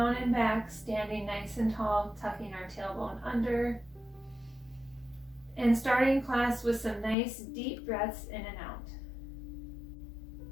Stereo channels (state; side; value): drops out; right; at 7.2 s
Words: and back, standing nice and tall, tucking our tailbone under. And starting class with some nice deep breaths in and out.